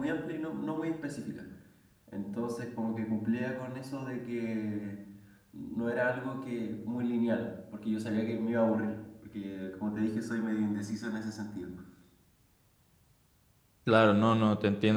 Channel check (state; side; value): identical; both; correlation 1.00